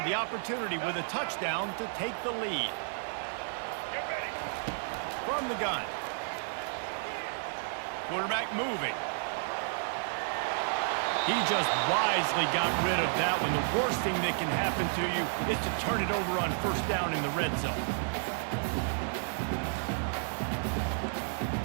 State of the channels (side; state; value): left; silent; 57 dB below the other